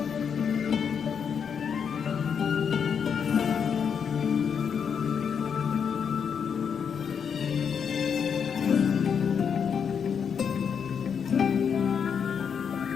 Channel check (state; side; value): quieter; right; 7.0 dB